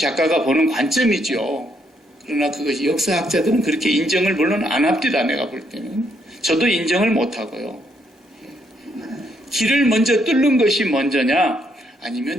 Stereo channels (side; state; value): both; normal; correlation 0.74